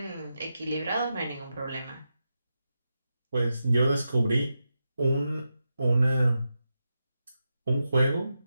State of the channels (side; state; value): both; inverted; correlation -0.89